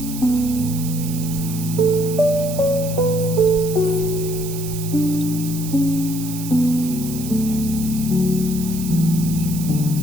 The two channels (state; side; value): noise; right; hiss, 11 dB below the sound